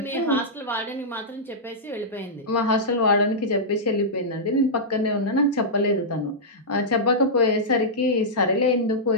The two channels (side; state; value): both; normal; correlation -0.11